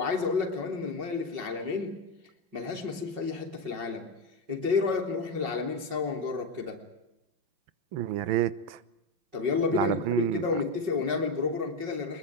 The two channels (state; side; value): late; left; 5.4 ms